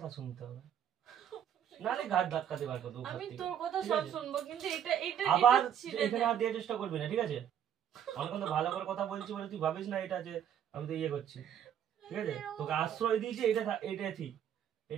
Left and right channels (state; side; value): quieter; left; 9.5 dB